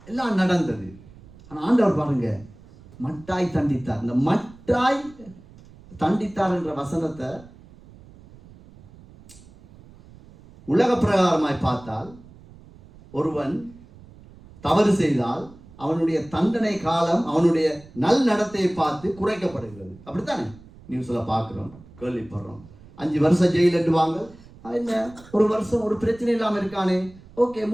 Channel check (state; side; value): noise; right; rumble, 22 dB below the sound